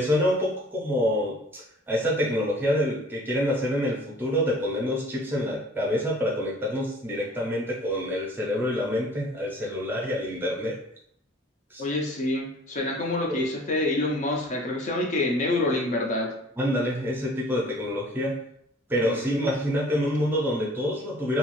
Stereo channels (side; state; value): both; normal; correlation 0.50